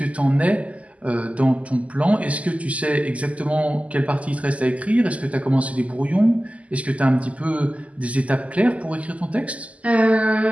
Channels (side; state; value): left; late; 0.068 ms